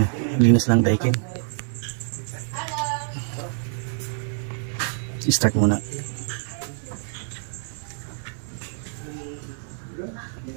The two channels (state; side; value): silent; left; digital silence